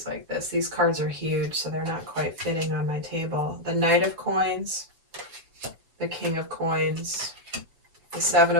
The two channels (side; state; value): left; late; 6.1 ms